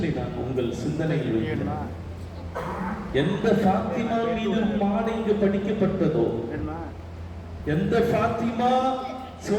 நான் உங்கள் சிந்தனையில் வைக்கிறேன். எந்த ஃபாத்திமா மீது மாட இங்கு படிக்கப்பட்டதோ, எந்த ஃபாத்திமா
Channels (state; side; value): identical; both; correlation 1.00